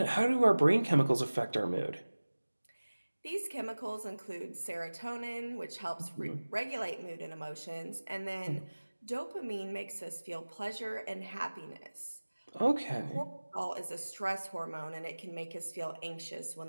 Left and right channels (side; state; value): both; inverted; correlation -1.00